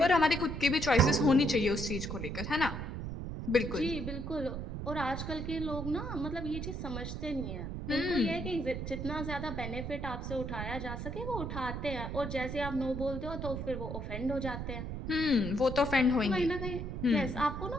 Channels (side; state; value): right; noise; rumble, 5 dB below the sound